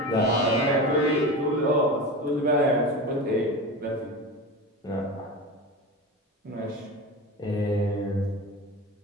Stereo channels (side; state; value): both; normal; correlation 0.27